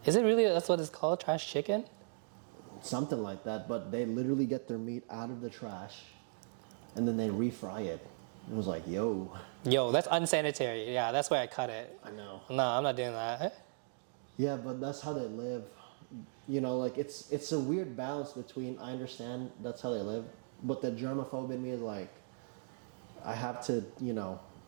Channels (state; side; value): silent; left; digital silence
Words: Is it really? That's what it's called, trash chicken. something like that. But they literally get their meat out of the trash, and then they refry it. It was like, yo, Yo, that's unsanitary. Yeah, that's why I cut it. I know. No, I'm not doing that. Yeah, but that's how they live. You know, like it's a weird balance between I understand that's how they live, but the germaphobe in me is like, I have to, you know,